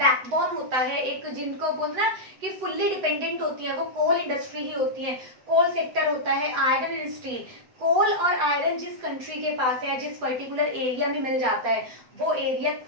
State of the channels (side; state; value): left; late; 8.0 ms